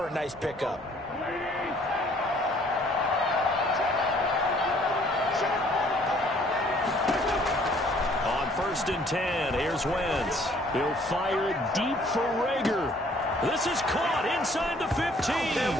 a nice pickup. On 1st and 10, here's Wentz. He'll fire it deep for Reagor. This is caught inside the 15.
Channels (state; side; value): normal; both; correlation 0.59